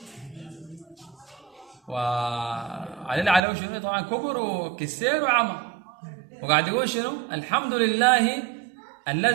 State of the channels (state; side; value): drops out; left; at 3.4 s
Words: وعليه شنو طبعا كبر وكسير وعمى، وقاعد يقول شنو الحمد لله